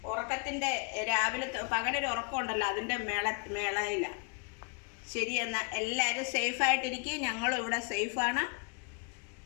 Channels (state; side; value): quieter; right; 36.6 dB